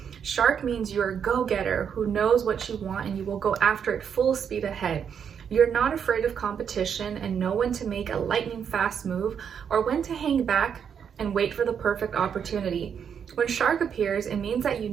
Shark means you're a go-getter who knows what you want and you will go after it full speed ahead. You're not afraid of competition and know when to make a lightning fast move or when to hang back and wait for the perfect opportunity. When shark appears, it means that you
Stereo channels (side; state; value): left; quieter; 7.6 dB